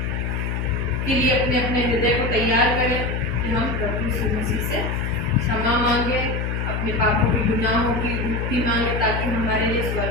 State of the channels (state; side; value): noise; left; hum, 1 dB below the sound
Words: के लिए अपने अपने हृदय को तैयार करें कि हम प्रभु यीशु मसीह से क्षमा मांगे, अपने पापों के गुनाहों की मुक्ति मांगे ताकि हमारे लिए